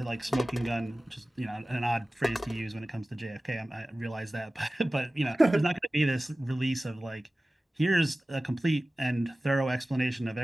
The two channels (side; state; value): both; normal; correlation 0.97